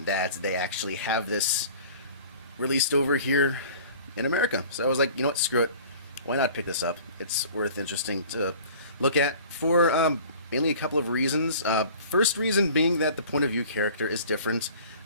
that they actually have this released over here in America. So I was like, you know what, screw it. Why not pick this up? It's interesting to look at for mainly a couple of reasons. First reason being that the point of view character is different,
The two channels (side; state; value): both; inverted; correlation -0.46